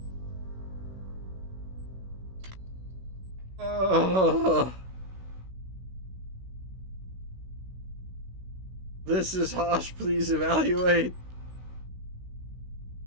This is harsh, please evaluate.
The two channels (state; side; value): late; left; 16 ms